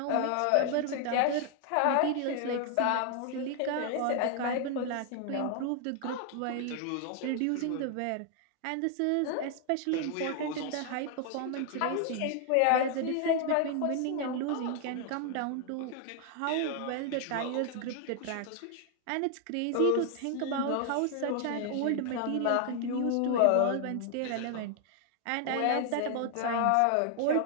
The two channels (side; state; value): both; different; correlation 0.00